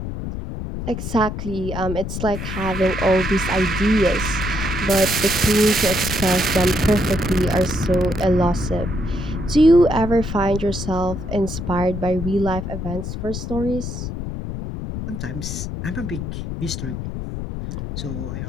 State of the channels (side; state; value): left; noise; rumble, 5 dB below the sound